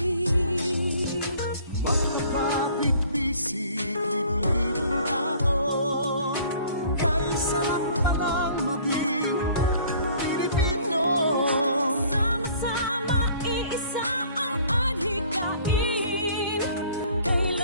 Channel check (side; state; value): both; inverted; correlation -0.53